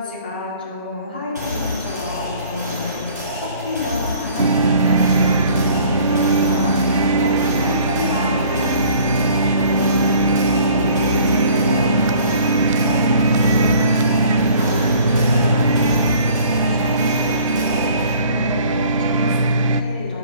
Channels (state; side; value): inverted; both; correlation -0.53